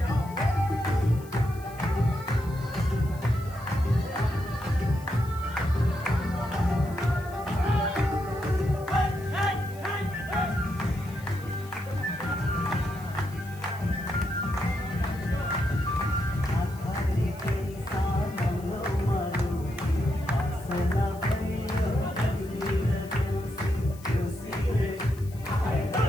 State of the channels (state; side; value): noise; left; hiss, 22 dB below the sound